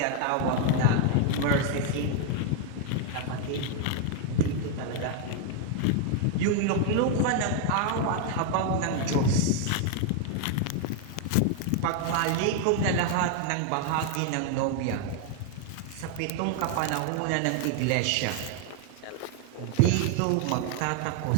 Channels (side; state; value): both; different; correlation 0.00